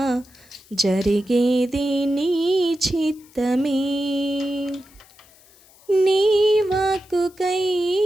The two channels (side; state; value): left; noise; hiss, 27 dB below the sound